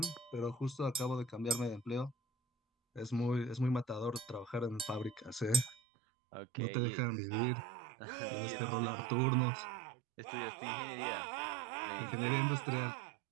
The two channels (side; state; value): left; drops out; at 5.8 s